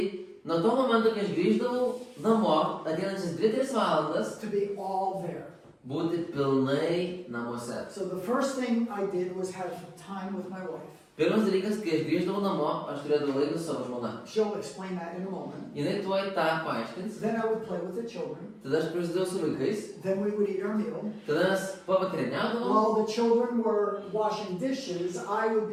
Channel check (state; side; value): identical; both; correlation 1.00